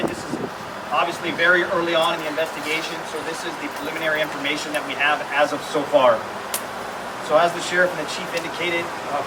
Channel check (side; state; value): both; identical; correlation 1.00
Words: this is obviously very early on in the investigation, so this is the preliminary information that we have as of so far. So as the Sheriff and the Chief indicated,